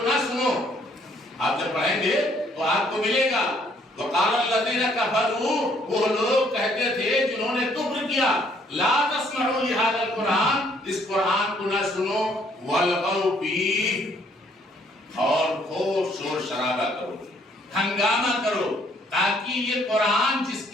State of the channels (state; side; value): normal; both; correlation 0.65